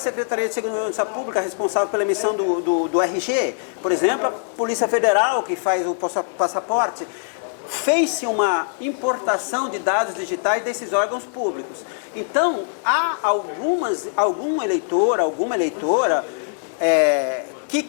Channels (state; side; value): silent; right; digital silence